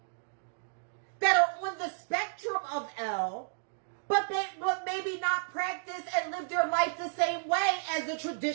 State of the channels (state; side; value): silent; left; digital silence